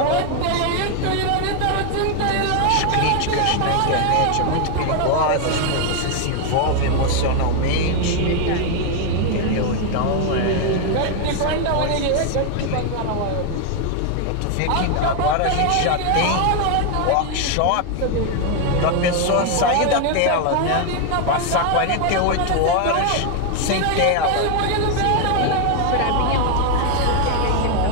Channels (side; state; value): both; different; correlation 0.01